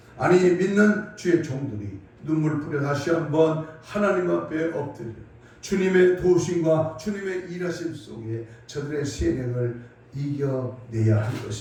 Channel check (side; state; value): both; identical; correlation 1.00